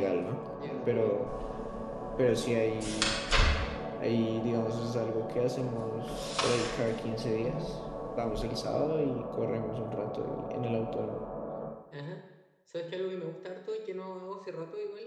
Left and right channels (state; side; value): identical; both; correlation 1.00